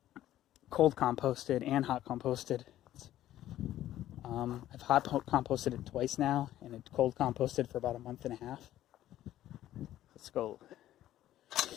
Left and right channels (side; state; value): right; quieter; 13.2 dB